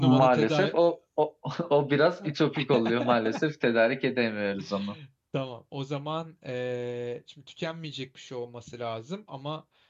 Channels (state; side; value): identical; both; correlation 1.00